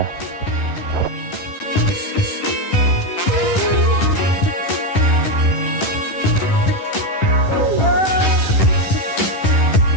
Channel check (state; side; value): late; right; 10 ms